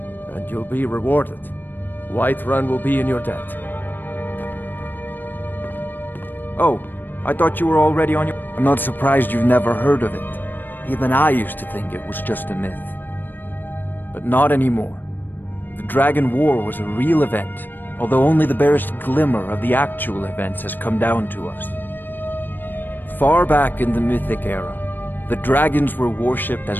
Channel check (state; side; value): late; right; 0.092 ms